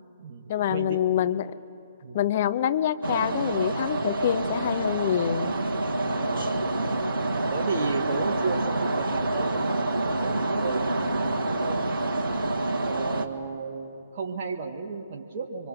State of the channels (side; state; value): both; inverted; correlation -0.69